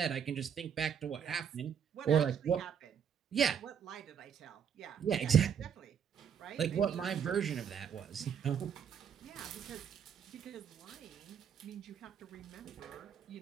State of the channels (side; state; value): left; quieter; 7.9 dB